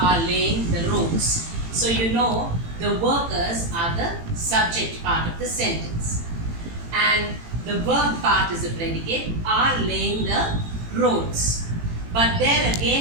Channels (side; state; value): left; late; 18 ms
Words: laying the roads. So you know the workers are the subject part of the sentence. And the verb part is the predicate, are laying the roads. But there